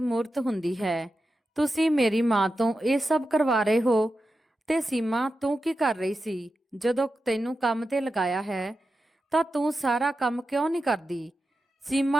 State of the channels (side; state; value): both; normal; correlation 0.91